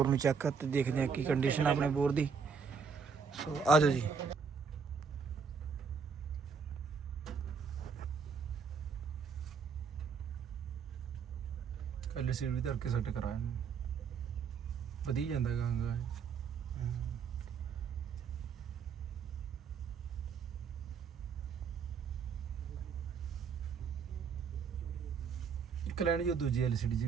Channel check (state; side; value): quieter; left; 5.9 dB